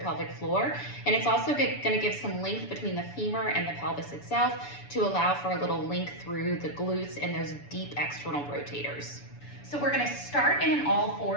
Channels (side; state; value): right; late; 7.0 ms